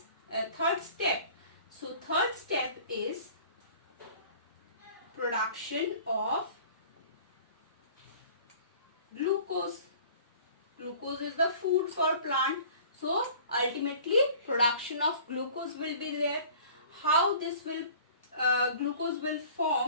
third step. So third step is production of glucose. Glucose is the food for plant. So ultimately production of glucose will be there. How this will glucose will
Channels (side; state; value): both; inverted; correlation -0.48